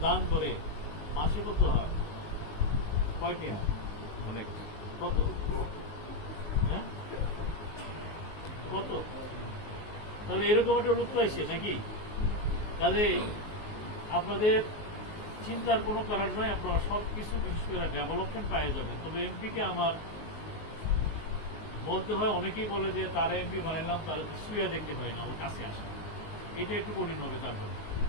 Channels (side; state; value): right; late; 19 ms